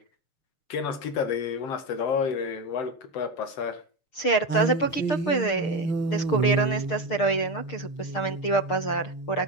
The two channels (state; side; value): late; right; 6.6 ms